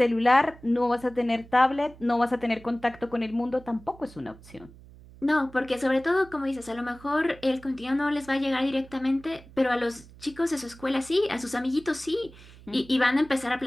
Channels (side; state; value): right; noise; hum, 21 dB below the sound